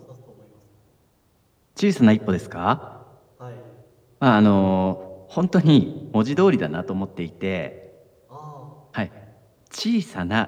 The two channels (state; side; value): identical; both; correlation 1.00